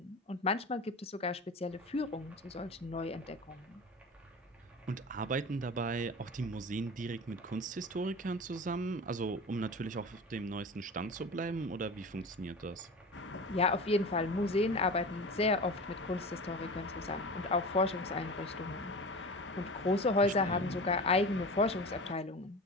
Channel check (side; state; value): both; normal; correlation 0.32